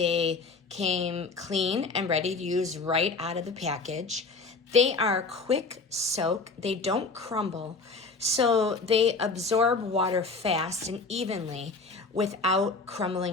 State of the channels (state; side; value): quieter; right; 4.0 dB